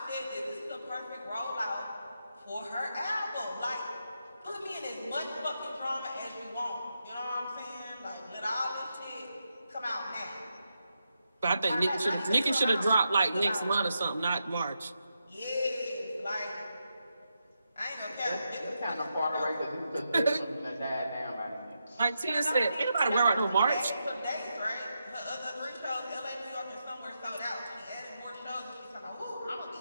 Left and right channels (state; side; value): inverted; both; correlation -0.85